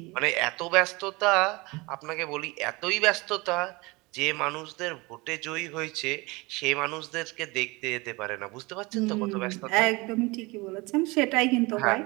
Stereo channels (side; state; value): left; quieter; 24.5 dB